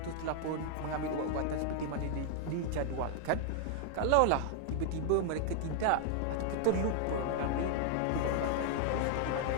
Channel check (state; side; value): different; both; correlation 0.00